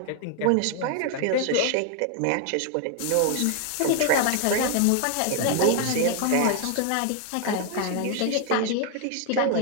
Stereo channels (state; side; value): different; both; correlation 0.00